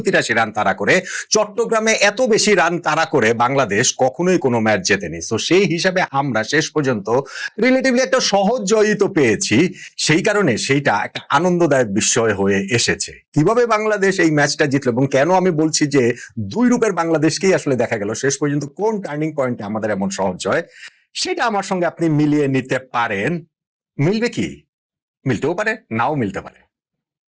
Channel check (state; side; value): identical; both; correlation 1.00